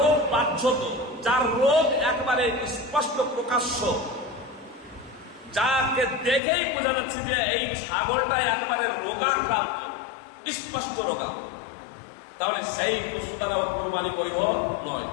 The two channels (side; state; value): right; drops out; at 6.4 s